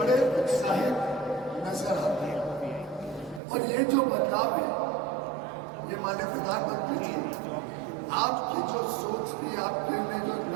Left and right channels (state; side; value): drops out; left; at 3.4 s